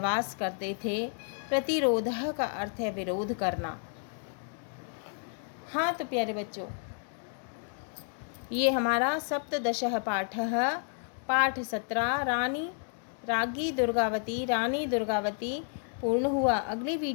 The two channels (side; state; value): right; silent; 57 dB below the other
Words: करते थे, प्रतिरोधः का अर्थ है विरोध करना। हाँ तो प्यारे बच्चों, ये हमारा सप्तदशः पाठः पाठ 17 राज्ञी दुर्गावती पूर्ण हुआ। अगली